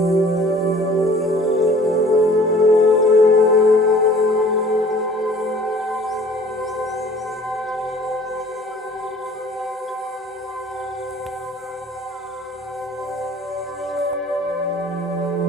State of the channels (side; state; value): both; normal; correlation 0.50